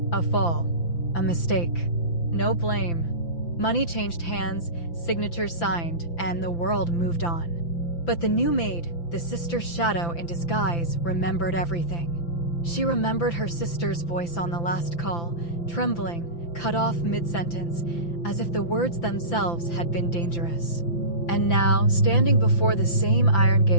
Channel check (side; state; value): right; late; 5.9 ms